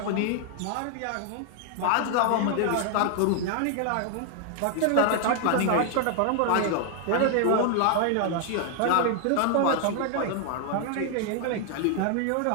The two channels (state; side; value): different; both; correlation 0.00